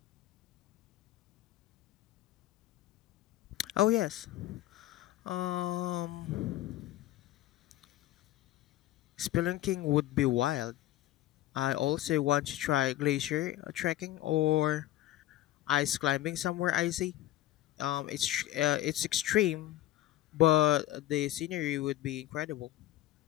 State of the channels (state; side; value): quieter; right; 14.5 dB